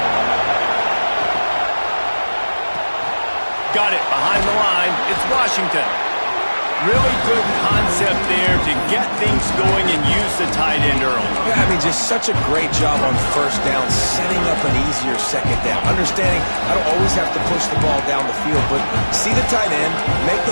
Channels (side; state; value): both; inverted; correlation -1.00